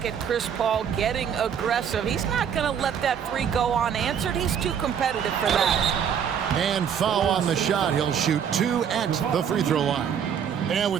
at Chris Paul getting aggressive. He's not going to let that 3 go unanswered. He's too competitive for that. And foul on the shot. He'll shoot 2 at the free throw line. And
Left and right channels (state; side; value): quieter; left; 8.1 dB